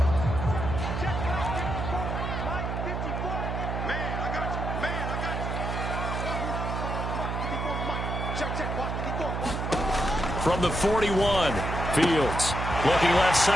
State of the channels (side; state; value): right; noise; hum, 3 dB below the sound